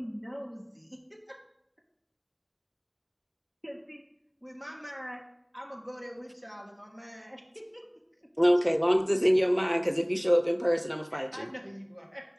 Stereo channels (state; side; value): identical; both; correlation 1.00